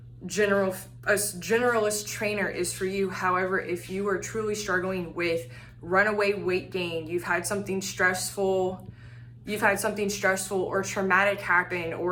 a generalist trainer is for you. However, if you are truly struggling with runaway weight gain, you've had something stressful or traumatic happen,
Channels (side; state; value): both; identical; correlation 1.00